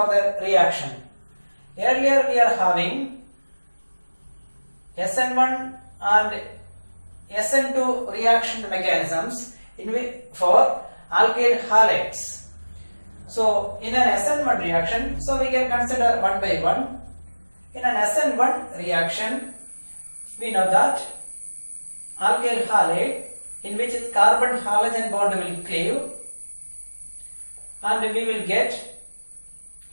the reaction. Earlier we are having SN1 and SN2 reaction mechanisms for alkyl halides. So in an SN1 reaction, so we can consider one by one. In an SN1 reaction, we know that alkyl halide in which carbon halogen bond will cleave, and we will get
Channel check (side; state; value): both; inverted; correlation -1.00